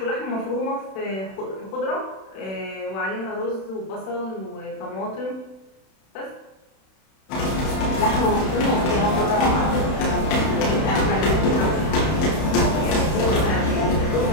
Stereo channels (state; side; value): late; right; 31 ms